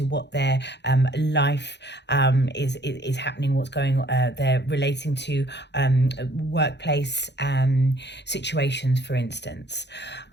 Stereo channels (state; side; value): late; right; 0.50 ms